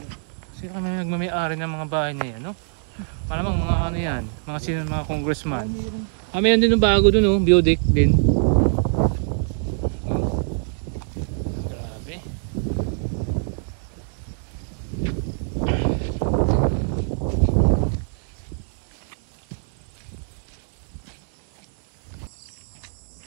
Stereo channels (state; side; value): silent; left; 63 dB below the other